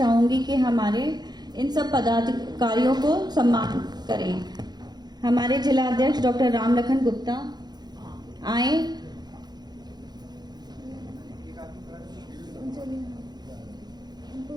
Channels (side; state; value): left; late; 0.20 ms